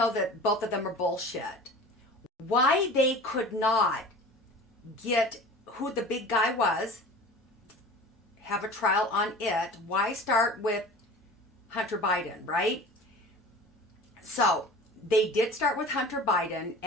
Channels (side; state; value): both; normal; correlation 0.39